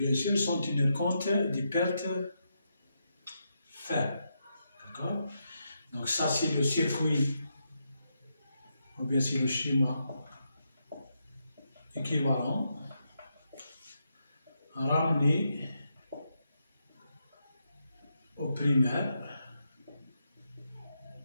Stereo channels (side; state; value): both; inverted; correlation -0.83